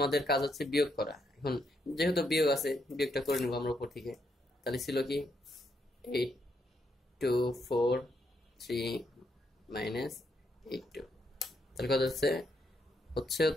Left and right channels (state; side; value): normal; both; correlation 0.78